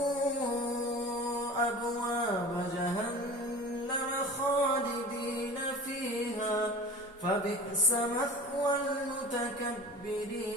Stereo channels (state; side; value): normal; both; correlation 0.37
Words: أبواب جهنم خالدين فيها فبئس مثوى